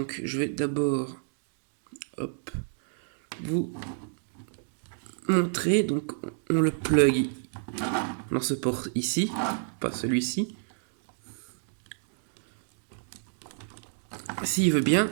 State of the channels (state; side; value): silent; left; digital silence